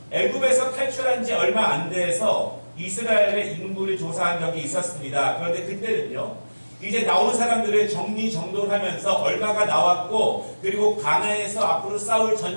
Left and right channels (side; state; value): both; inverted; correlation -1.00